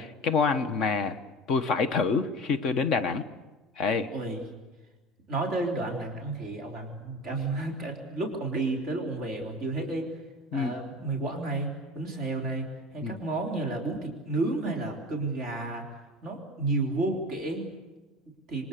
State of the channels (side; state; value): both; normal; correlation 0.34